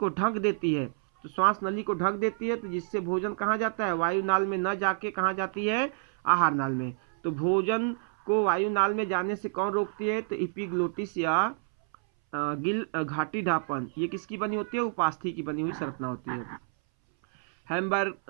ढक देती है। तो श्वास नली को ढक देती है, तो जिससे भोजन कहाँ जाता है? वायु नाल में न जाके कहाँ जाती है? आहार नाल में। तो भोजन को वायु नाल में जाने से कौन रोकती है? तो एपिग्लोटिस या घाटी ढापन। ये किसकी बनी होती है? उपास्थि की बनी हुई संरचना होती है।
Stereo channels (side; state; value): left; silent; 59 dB below the other